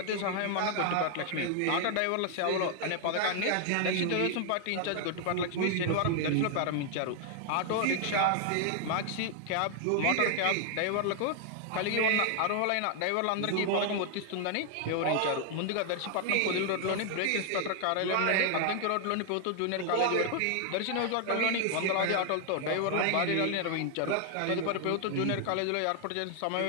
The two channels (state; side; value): different; both; correlation 0.00